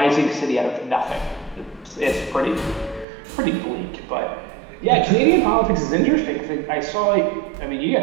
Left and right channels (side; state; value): left; drops out; at 3.1 s